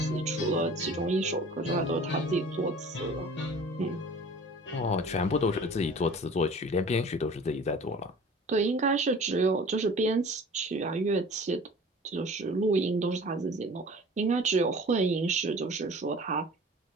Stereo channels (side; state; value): both; normal; correlation 0.44